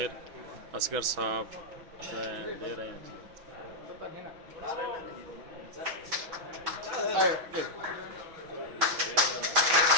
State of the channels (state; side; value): late; left; 6.2 ms